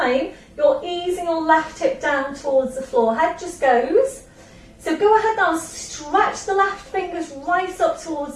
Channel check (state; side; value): identical; both; correlation 1.00